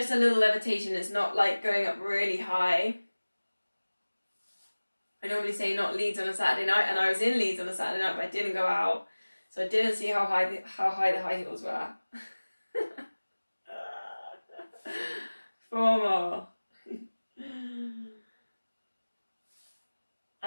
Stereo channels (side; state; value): both; inverted; correlation -1.00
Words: a little levitation. It's not like going up really high. I normally say not Leeds on a Saturday night, and I was in Leeds on a Saturday night, but I didn't go out, so I didn't see how high the high heels were. 4 more.